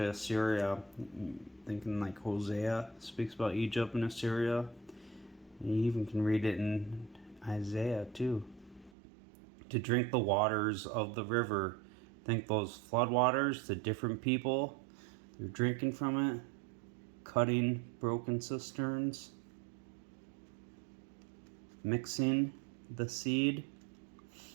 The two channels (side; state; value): left; drops out; at 8.9 s